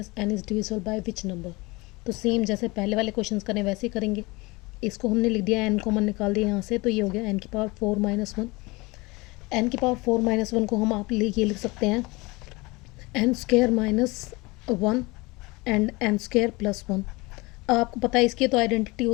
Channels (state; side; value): quieter; right; 23.8 dB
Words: n is divisible by which number. तो सेम जैसे पहले वाले क्वेश्चंस करें वैसे ही करेंगे। इसको हमने लिख दिया, n कॉमन निकाल दिया यहाँ से, तो ये हो गया n की पावर 4 माइनस 1। एन की पावर 4 माइनस 1 को हम आप ये लिख सकते हैं n square minus 1 and n square plus 1। अब आपको पता है इसकी तो आइडेंटिटी